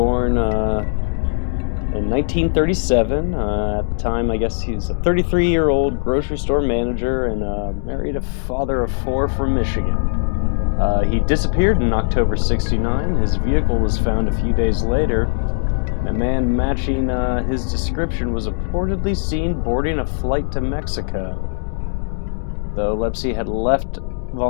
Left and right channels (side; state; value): right; silent; digital silence